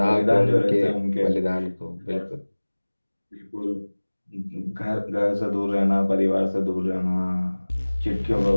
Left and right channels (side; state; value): both; inverted; correlation -1.00